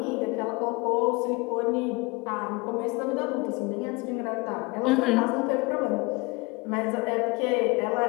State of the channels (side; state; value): right; quieter; 25.9 dB